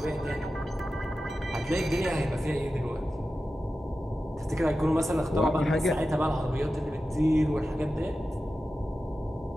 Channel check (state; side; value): normal; both; correlation 0.93